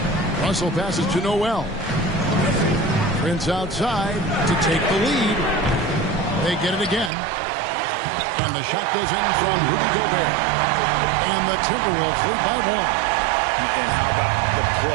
Russell passes to Noel. Prince outside to take the lead. They get it again. And the shot goes in from Rudy Gobert. And the Timberwolves lead by 1. And how about the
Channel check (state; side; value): drops out; left; at 7.1 s